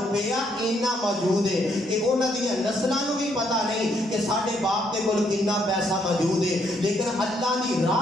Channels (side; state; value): both; normal; correlation 0.72